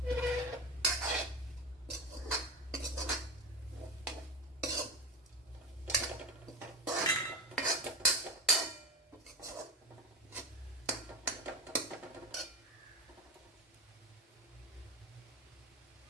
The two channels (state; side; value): normal; both; correlation 0.22